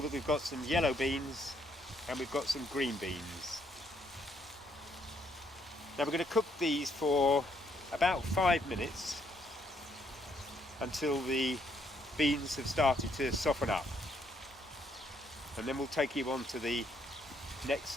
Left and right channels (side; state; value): both; normal; correlation 0.71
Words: we've got some yellow beans and we've got some green beans. Now we're going to cook these for about 5 minutes until the beans have started to soften up. And then we'll take you on to the next